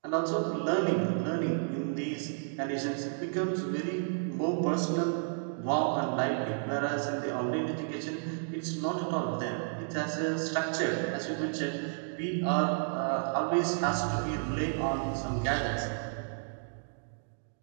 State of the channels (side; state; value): left; silent; digital silence